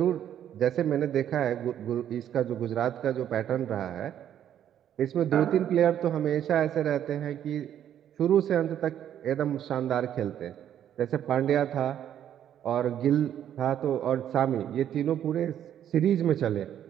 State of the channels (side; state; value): left; quieter; 10.3 dB